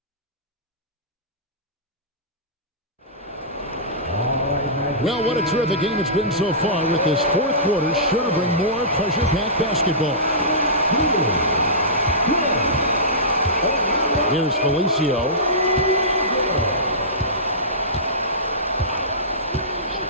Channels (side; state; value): both; normal; correlation -0.19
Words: Well, what a terrific game it's been so far with this fourth quarter. Sure to bring more pressure-packed basketball. Here's Felicio.